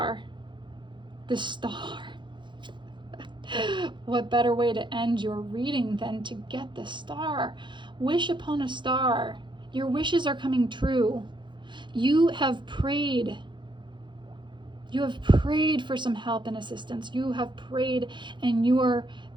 The star. What better way to end your reading than to get the star? Wish upon a star. Your wishes are coming true. You have prayed. You have prayed for some help and assistance. You have prayed, and you are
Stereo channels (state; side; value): late; left; 0.23 ms